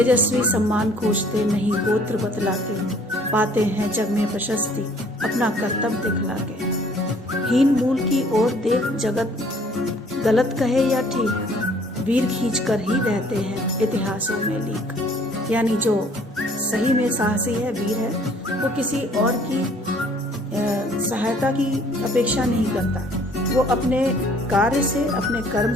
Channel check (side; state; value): both; normal; correlation 0.58